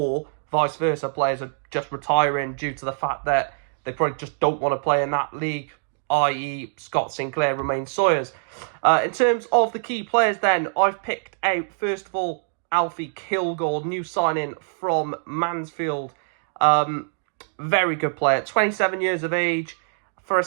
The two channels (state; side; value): silent; left; digital silence